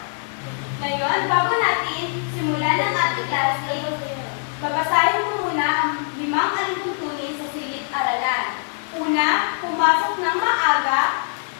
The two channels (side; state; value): right; silent; 64 dB below the other